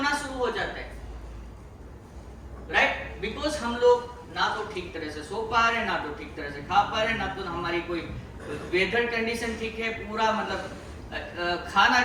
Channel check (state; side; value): identical; both; correlation 1.00